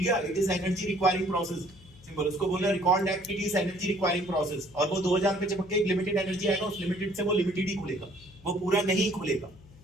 it is energy requiring process. Simple. उसको बोलना recall that it is energy requiring process. और वो 2000 पे चिपक के एक लिमिटेड एनर्जी आएगा, उस लिमिटेड से वो लिमिटेड ही खुलेगा, वो पूरा नहीं खुलेगा।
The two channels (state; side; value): noise; left; hum, 23 dB below the sound